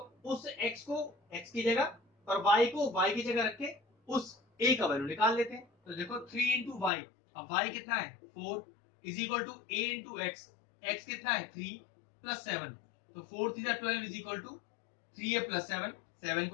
उस x को x की जगह और y को y की जगह रख के उस a का वैल्यू निकाल लेते हैं। तो देखो 3 इंटू वाई, अब y कितना है 4 is equal to a into x, x कितना है 3 प्लस 7, तो 4 3 12 is equal to 3a plus 7, 7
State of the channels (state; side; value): drops out; right; at 6.9 s